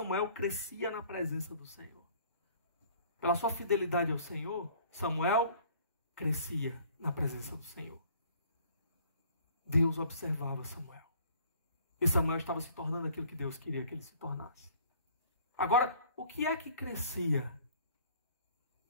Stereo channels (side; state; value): both; inverted; correlation -0.55